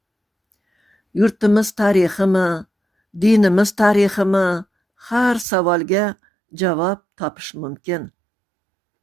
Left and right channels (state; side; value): drops out; left; at 5.5 s